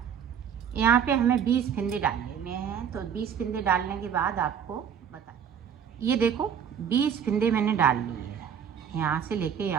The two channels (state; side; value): quieter; left; 8.0 dB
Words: यहाँ पे हमें 20 फिंदे डाल लेने हैं। तो 20 फिंदे डालने के बाद आपको बता, ये देखो 20 फिंदे मैंने डाल लिए हैं, यहाँ से लेके